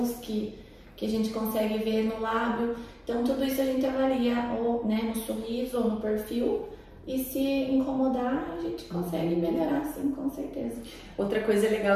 que a gente consegue ver no lábio. Então tudo isso a gente avalia ou, né, no sorriso ou no perfil. E se incomodar, a gente consegue melhorar, sim, com certeza. Outra coisa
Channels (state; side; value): identical; both; correlation 1.00